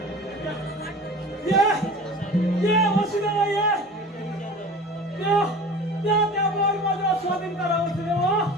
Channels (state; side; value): normal; both; correlation 0.39